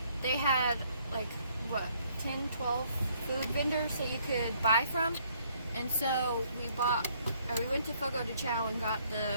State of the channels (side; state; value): both; inverted; correlation -0.66